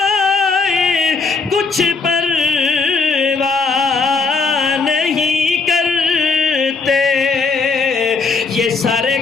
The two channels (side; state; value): right; quieter; 4.4 dB